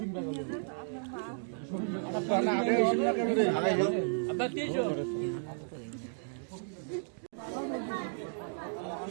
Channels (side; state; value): left; silent; digital silence